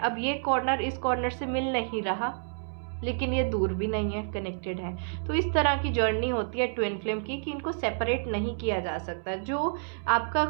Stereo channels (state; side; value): silent; left; 58 dB below the other